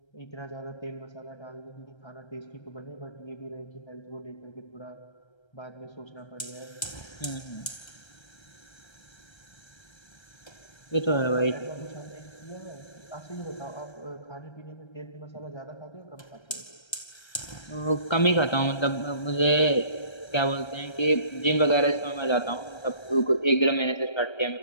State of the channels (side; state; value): right; late; 1.3 ms